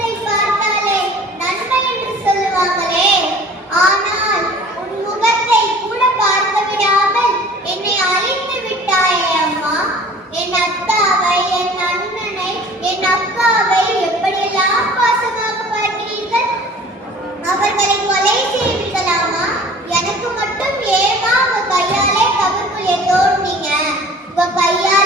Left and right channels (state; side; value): normal; both; correlation 0.46